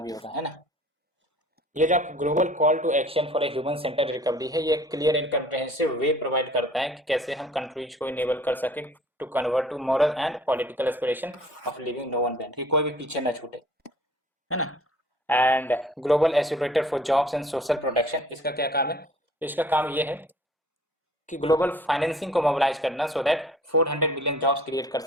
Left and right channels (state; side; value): normal; both; correlation 0.51